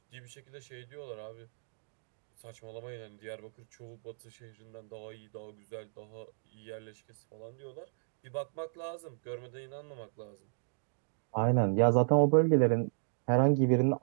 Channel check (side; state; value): left; silent; digital silence